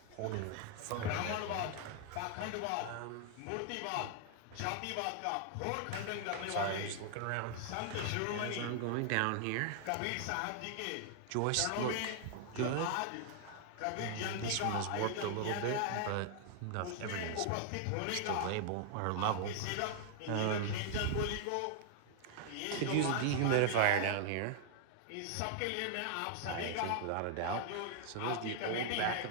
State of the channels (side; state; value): both; different; correlation 0.00